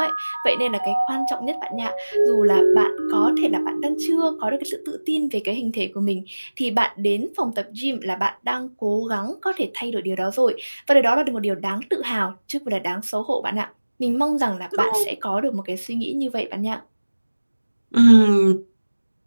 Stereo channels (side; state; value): both; inverted; correlation -1.00